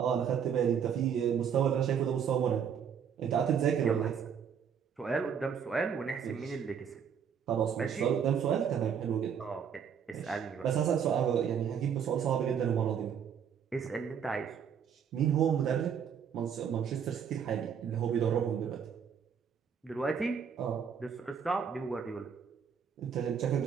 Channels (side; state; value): left; quieter; 7.6 dB